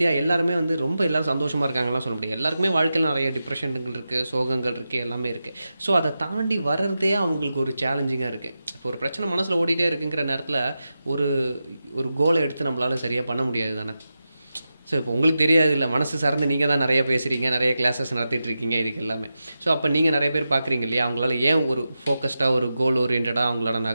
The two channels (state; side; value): inverted; both; correlation -0.90